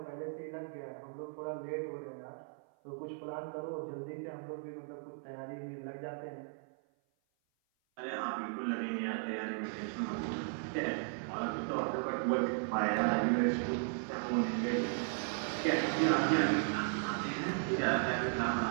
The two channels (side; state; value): left; silent; 54 dB below the other